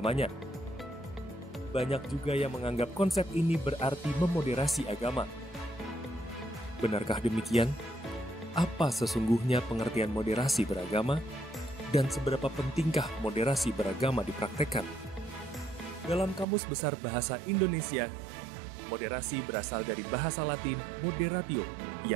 Banyak juga yang menganggap konsep ini berarti memoderasi agama. Benarkah demikian? Apa sesungguhnya pengertian moderasi beragama? Dan seberapa pentingkah moderasi beragama dipraktekkan? Dalam Kamus Besar Bahasa Indonesia, Moderasi berasal dari bahasa Latin moderatio,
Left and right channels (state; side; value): drops out; left; at 16.4 s